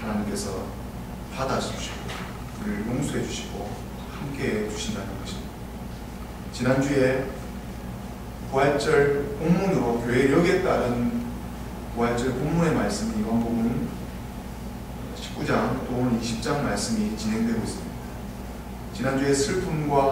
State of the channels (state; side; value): identical; both; correlation 1.00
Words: 받아주시고 우리를 용서해 주시고 함께해 주신다는 것입니다. 지난주에 부활절 본문으로 교회력에 따른 부활절 본문의 말씀이 요한복음 19장 또 오늘 20장 말씀이 진행되고 있습니다. 지난주에